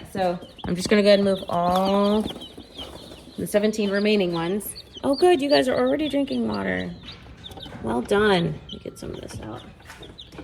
so I'm just gonna go ahead and move all the 17 remaining ones. Oh good, you guys are already drinking water. Well done. Let me get some of this out.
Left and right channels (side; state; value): both; identical; correlation 1.00